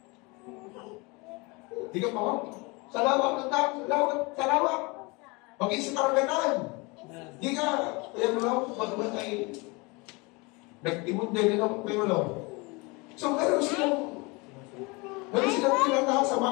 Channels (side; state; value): right; quieter; 26.6 dB